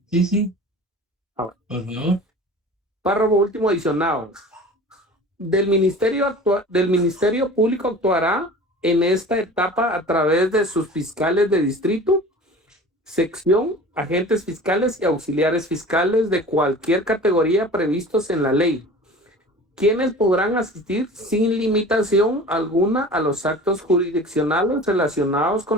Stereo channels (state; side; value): normal; both; correlation 0.40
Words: Por favor. Párrafo último adicionado. Del Ministerio Público actuará en esta etapa a través de sus fiscales de distrito, sección, agentes fiscales y auxiliares fiscales de cualquier categoría previstos en la ley, quienes podrán asistir sin limitación alguna a los actos jurisdiccionales relacionados